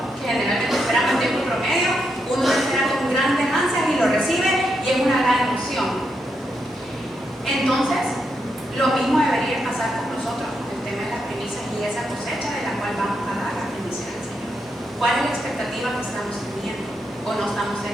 que generalmente esperamos el tiempo promedio, uno espera con grandes ansias y lo recibe y es una gran emoción. Entonces, lo mismo debería pasar con nosotros con el tema de las primicias y esa cosecha de la cual vamos a dar la primicia del Señor. ¿Cuál es la expectativa que estamos teniendo o no estamos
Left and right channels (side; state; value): both; normal; correlation 0.82